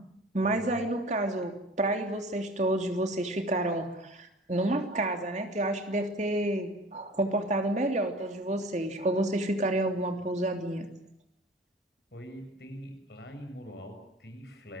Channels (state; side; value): normal; both; correlation 0.43